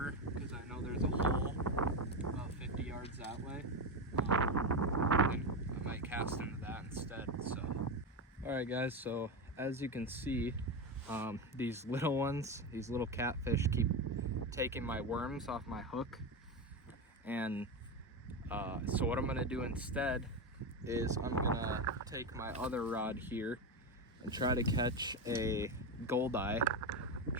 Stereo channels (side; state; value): both; normal; correlation 0.15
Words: because I know there's a hole about 50 yards that way. And I might cast into that instead. So, alright guys, so as you can see, these little ones, these little catfish keep taking my worms off my hook. And so what I'm gonna do instead is I'm gonna take my other rod here and try to catch a goldeye